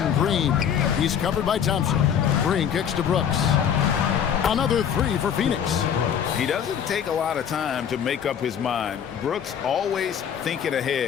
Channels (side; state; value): right; quieter; 8.3 dB